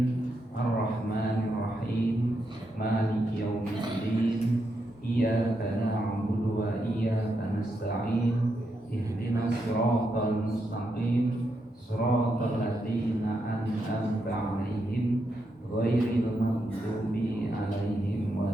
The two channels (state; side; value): normal; both; correlation 0.82